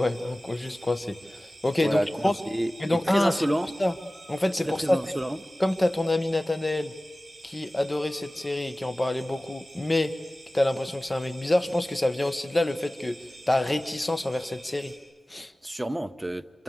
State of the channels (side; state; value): both; normal; correlation 0.97